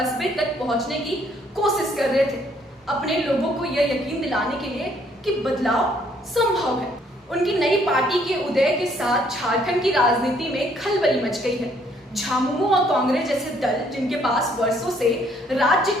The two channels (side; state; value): both; normal; correlation 0.66